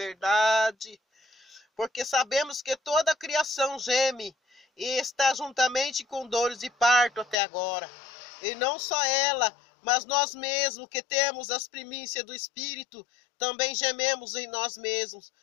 porque sabemos que toda a criação geme e está juntamente com dores de parto até agora. E não só ela, mas nós mesmos que temos as primícias do Espírito, também gememos em nós mesmos,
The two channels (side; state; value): right; drops out; at 7.4 s